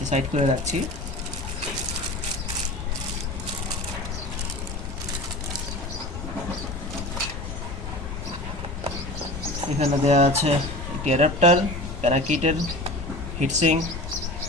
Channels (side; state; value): left; noise; rumble, 8 dB below the sound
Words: সাইড করে রাখছি। এখানে দেওয়া আছে একটি অ্যাডাপ্টার, প্যারাকিটের হিটসিং,